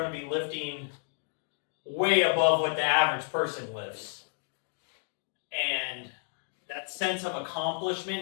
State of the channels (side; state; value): right; silent; digital silence